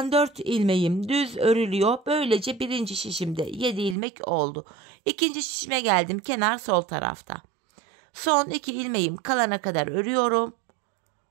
4 ilmeğim düz örülüyor. Böylece 1. şişimde 7 ilmek oldu. 2. şişime geldim. Kenar sol tarafta. Son 2 ilmeğim kalana kadar örüyorum.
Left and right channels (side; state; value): left; drops out; at 4.0 s